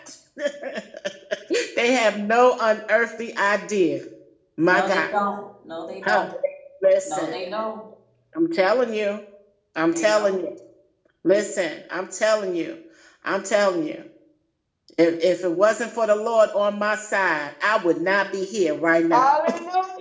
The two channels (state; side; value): identical; both; correlation 1.00